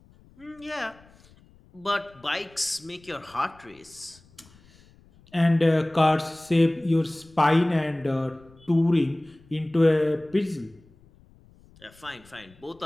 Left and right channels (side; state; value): left; noise; rumble, 27 dB below the sound